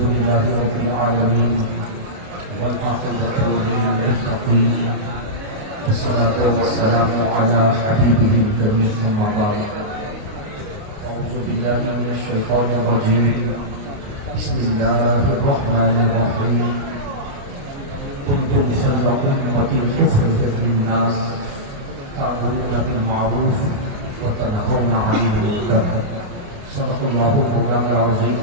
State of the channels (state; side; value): late; left; 28 ms